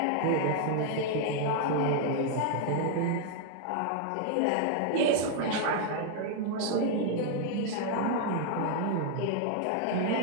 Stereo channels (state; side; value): different; both; correlation 0.00